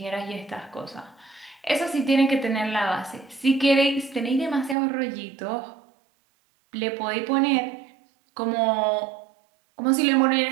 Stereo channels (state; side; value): drops out; left; at 4.8 s